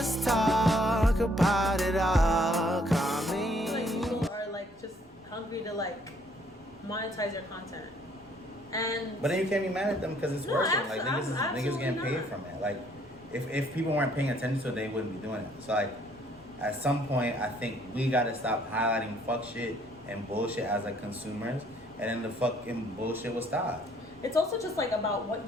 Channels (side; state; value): both; normal; correlation 0.64